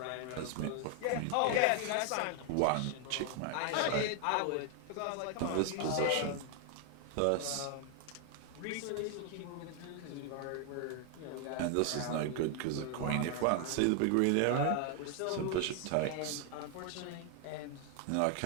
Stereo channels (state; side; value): different; both; correlation 0.00